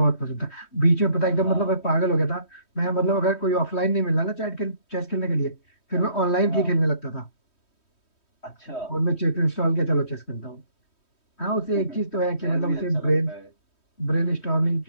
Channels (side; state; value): right; late; 3.1 ms